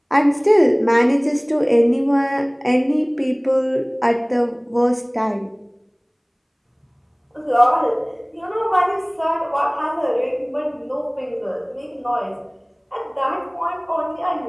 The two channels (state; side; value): identical; both; correlation 1.00